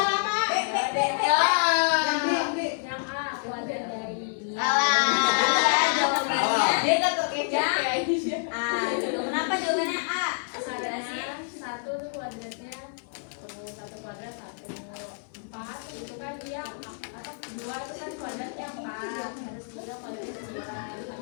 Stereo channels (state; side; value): silent; right; 59 dB below the other